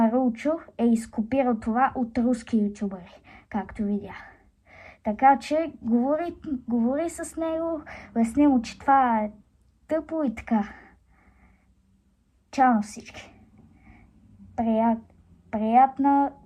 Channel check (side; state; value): both; identical; correlation 1.00